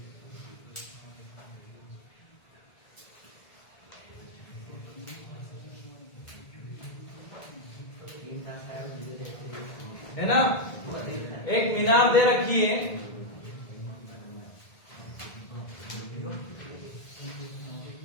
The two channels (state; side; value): late; right; 1.8 ms